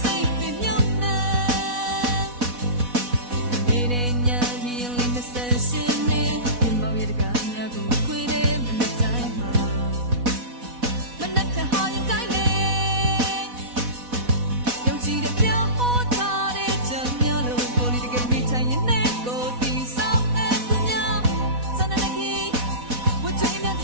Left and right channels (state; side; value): late; left; 4.1 ms